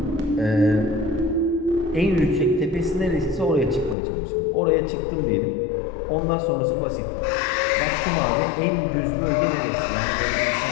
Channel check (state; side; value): drops out; right; at 4.0 s